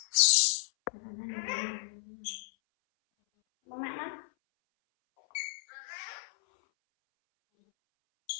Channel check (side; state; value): right; silent; 56 dB below the other